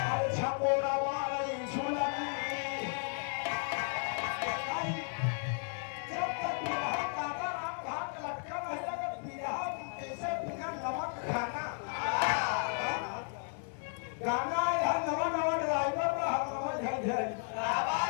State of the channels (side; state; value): right; silent; 55 dB below the other